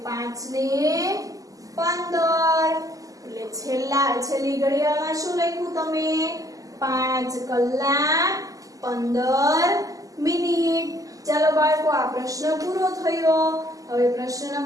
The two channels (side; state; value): left; late; 0.17 ms